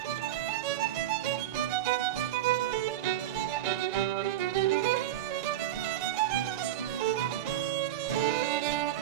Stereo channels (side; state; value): left; quieter; 12.6 dB